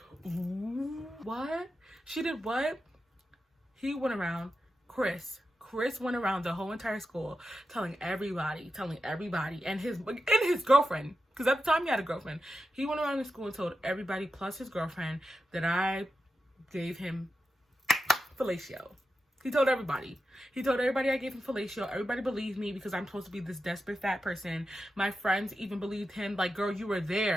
what? She did what? He went around, Chris went around the whole entire school telling everybody, and his girlfriend, because at the time he had a girlfriend. He went around the school and told everybody plus his girlfriend that I gave him fellatio. He told everybody I gave him fellatio. Everybody believed me because I'm supposed to be this desperate fat person. My friends even believed him. Like, girl, you were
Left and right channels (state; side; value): normal; both; correlation 0.90